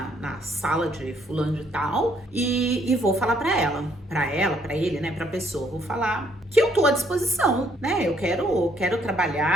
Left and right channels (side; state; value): both; normal; correlation 0.67